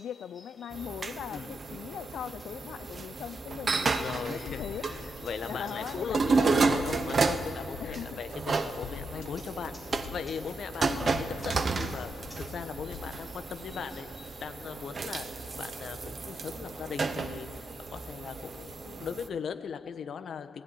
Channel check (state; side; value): normal; both; correlation 0.83